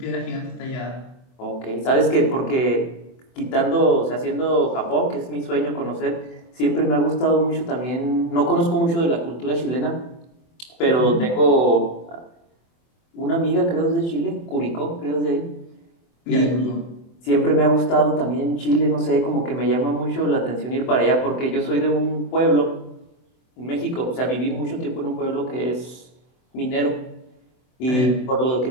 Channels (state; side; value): late; right; 24 ms